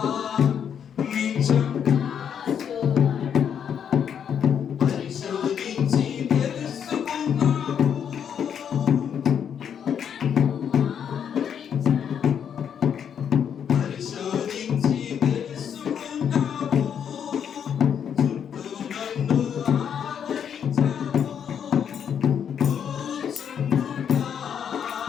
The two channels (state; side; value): quieter; right; 8.2 dB